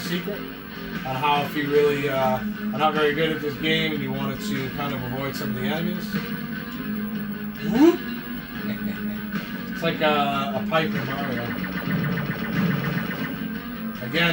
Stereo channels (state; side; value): identical; both; correlation 1.00